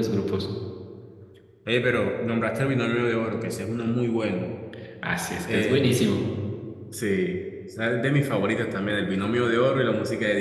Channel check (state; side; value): identical; both; correlation 1.00